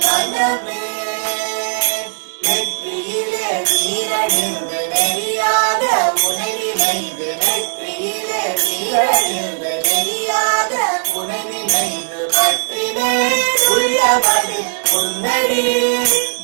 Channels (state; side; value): silent; left; digital silence